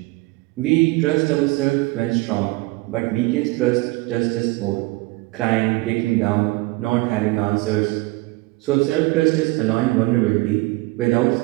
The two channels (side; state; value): left; quieter; 22.4 dB